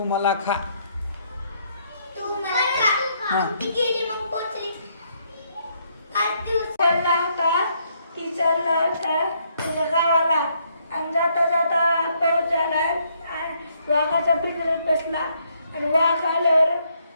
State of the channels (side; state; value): both; inverted; correlation -0.72